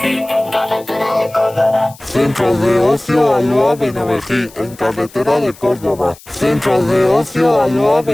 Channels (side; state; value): left; noise; hiss, 23 dB below the sound